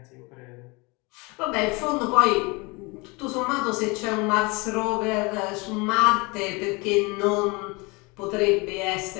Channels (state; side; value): quieter; right; 26.9 dB